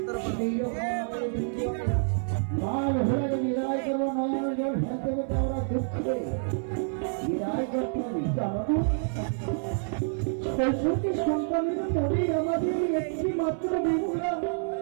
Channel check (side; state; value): left; silent; 59 dB below the other